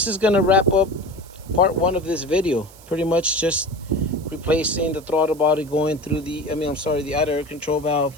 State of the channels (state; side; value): noise; right; hiss, 23 dB below the sound